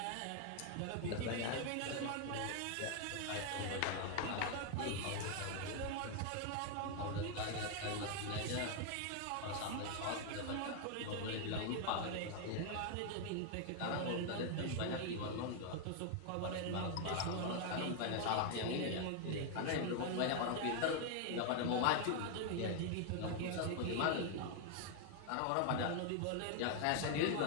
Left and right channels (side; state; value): both; different; correlation 0.00